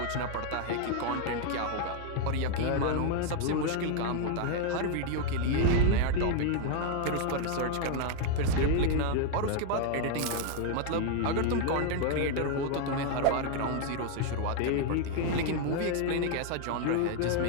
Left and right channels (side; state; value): both; different; correlation 0.00